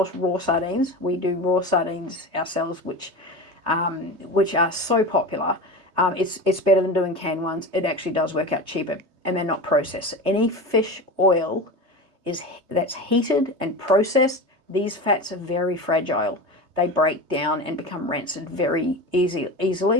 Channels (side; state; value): left; late; 3.2 ms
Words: raw sardines, we do raw sardines ourselves, which are so popular. It's better than doing canned ones. It actually does work out cheaper, and they're not processed. Any fish oil that's heated and processed, these fats are very fragile. They break down and become rancid very